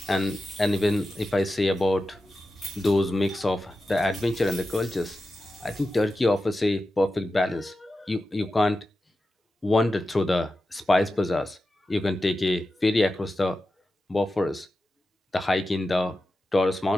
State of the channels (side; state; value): both; normal; correlation 0.92